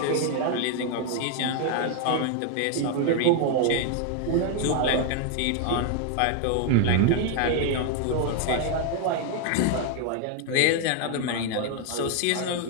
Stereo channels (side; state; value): both; different; correlation 0.01